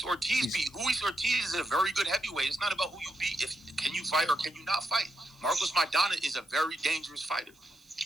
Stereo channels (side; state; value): right; noise; hiss, 30 dB below the sound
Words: Ortiz beat? Luis Ortiz is a very good heavyweight. It's not about who you beat. Can you fight or can you not fight? Marcos Maidana is a very dangerous fighter.